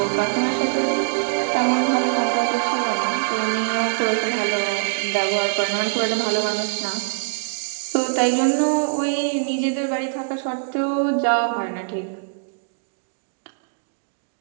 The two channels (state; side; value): silent; left; digital silence